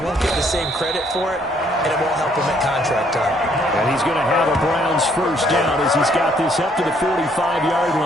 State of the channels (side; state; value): both; normal; correlation 0.67